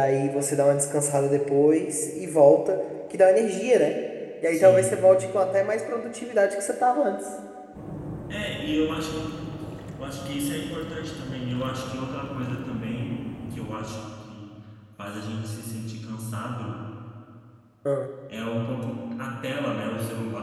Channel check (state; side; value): identical; both; correlation 1.00